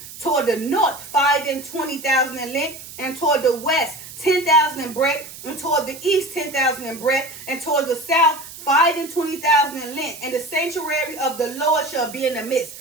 Toward the north, 5 and 20,000 in length, and toward the west, 10,000 in breadth, and toward the east, 10,000 in breadth, and toward the south, 5 and 20,000 in length. And the sanctuary of the Lord shall be in the midst.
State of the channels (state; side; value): noise; right; hiss, 14 dB below the sound